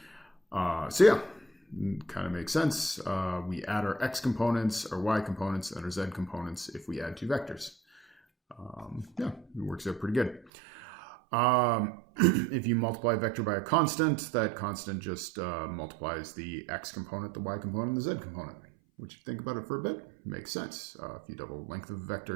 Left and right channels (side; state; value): left; drops out; at 10.5 s